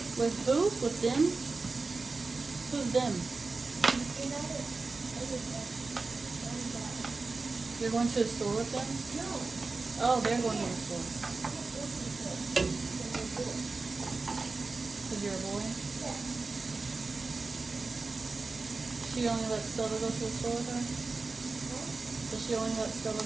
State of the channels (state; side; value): quieter; left; 3.9 dB